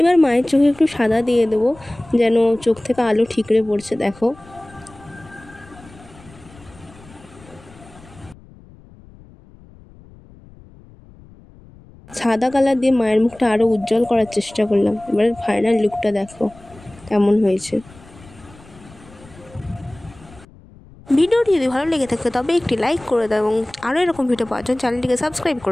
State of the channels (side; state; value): left; noise; rumble, 23 dB below the sound